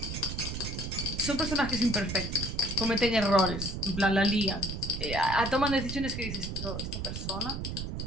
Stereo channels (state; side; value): noise; right; rumble, 5 dB below the sound